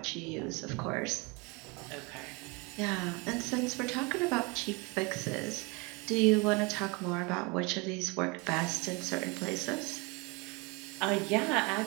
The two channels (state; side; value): quieter; left; 28.3 dB